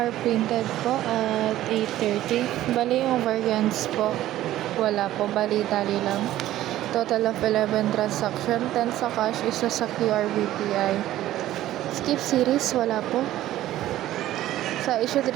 printed po at 8:30. Bali yung variants po, wala po. Bali tali lang. Total of 11 transaction. 10 sa cash, isa sa QR BPI. Skip series, wala po. Sa issued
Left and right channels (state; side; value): quieter; left; 14.0 dB